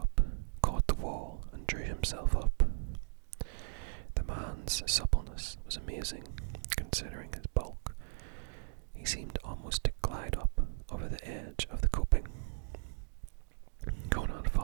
caught the wall, and drew himself up. The man's suppleness was amazing, considering his bulk. He seemed almost to glide up over the edge of the coping. Conan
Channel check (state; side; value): silent; left; digital silence